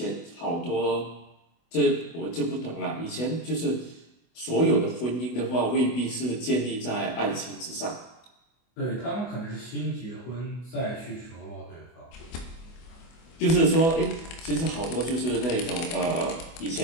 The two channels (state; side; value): late; right; 24 ms